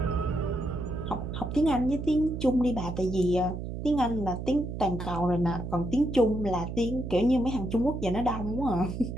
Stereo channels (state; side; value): noise; right; hum, 6 dB below the sound